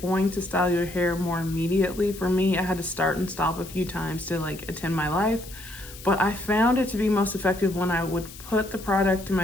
to style your hair more immediately. For me, I had to start and stop a few times to like attend my life, but I found it to be most effective when I would put the product in my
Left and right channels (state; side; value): noise; left; hiss, 16 dB below the sound